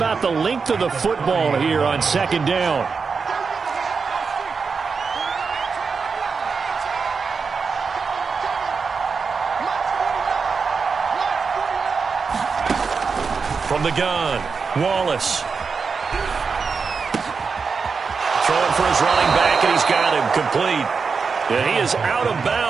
the length of the football here on second down. From the gun, Wallace. Throwing for his running back, and he's got him complete. And he is out of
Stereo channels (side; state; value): left; quieter; 5.2 dB